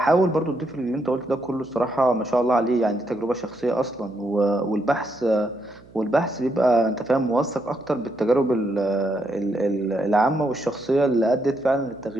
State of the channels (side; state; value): right; noise; hum, 24 dB below the sound